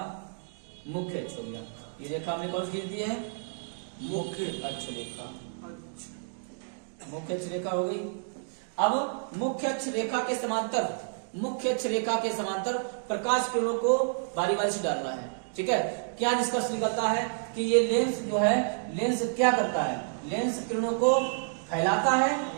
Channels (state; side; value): silent; left; digital silence